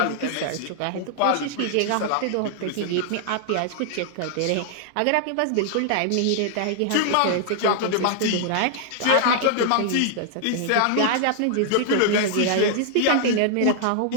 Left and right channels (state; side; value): different; both; correlation -0.01